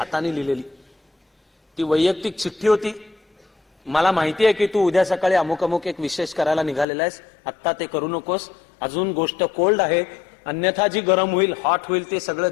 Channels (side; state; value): right; drops out; at 6.9 s